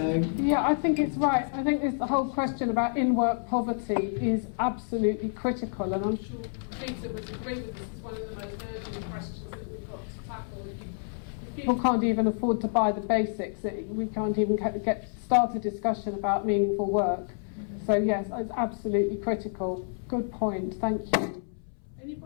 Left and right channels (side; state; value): right; silent; 59 dB below the other